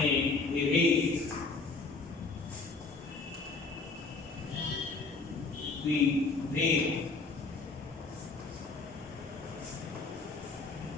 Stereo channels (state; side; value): quieter; right; 3.9 dB